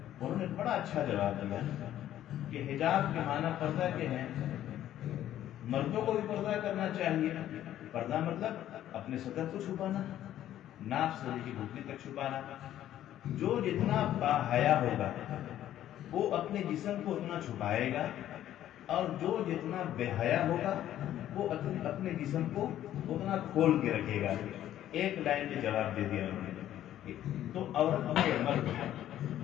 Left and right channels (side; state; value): right; quieter; 12.2 dB